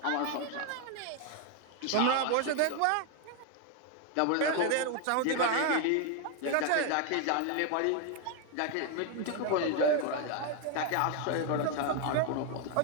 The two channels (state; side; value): different; both; correlation 0.01